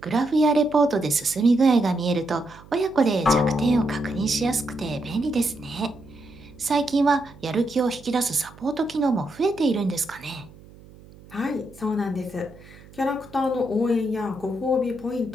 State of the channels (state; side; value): noise; right; hum, 22 dB below the sound